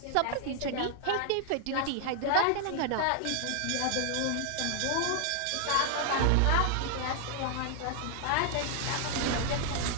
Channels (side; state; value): both; different; correlation 0.00